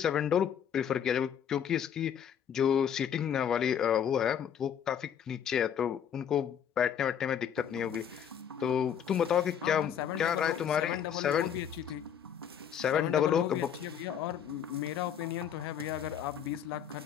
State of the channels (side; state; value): right; quieter; 8.6 dB